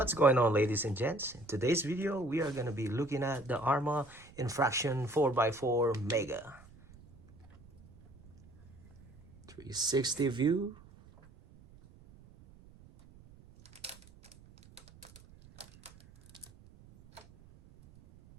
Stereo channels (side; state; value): right; noise; rumble, 23 dB below the sound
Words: What's going on, ladies and gents? In today's video, we are going to be looking at the Arrma Infraction 4x4 Mega 360 view.